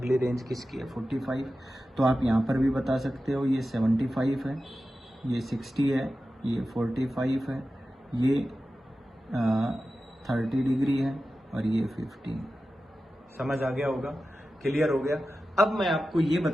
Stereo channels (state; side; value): normal; both; correlation 0.93